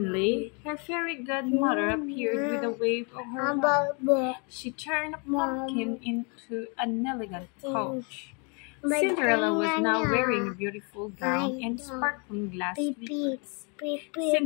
her fairy godmother appeared with a wave of her wand. She turned a pumpkin into an elegant coach. Cinderella was now wearing a beautiful gown and sparkling glass slippers.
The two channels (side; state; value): right; quieter; 34.9 dB